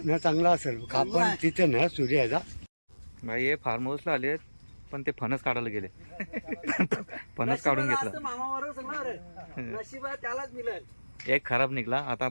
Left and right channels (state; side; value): inverted; both; correlation -1.00